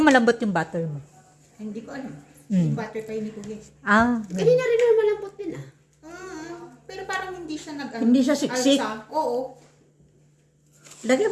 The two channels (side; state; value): both; identical; correlation 1.00